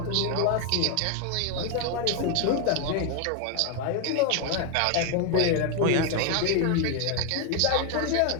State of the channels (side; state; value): both; different; correlation 0.01